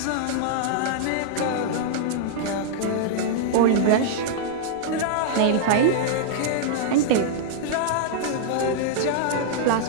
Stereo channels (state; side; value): different; both; correlation -0.01